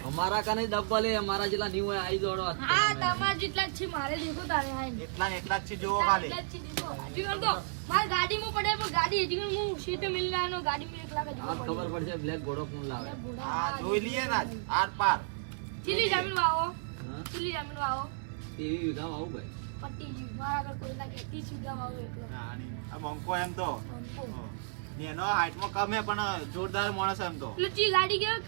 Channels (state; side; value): silent; left; 56 dB below the other